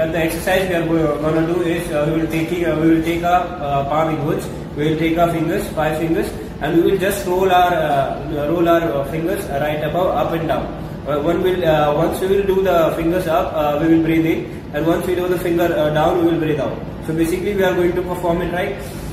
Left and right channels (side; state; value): both; identical; correlation 1.00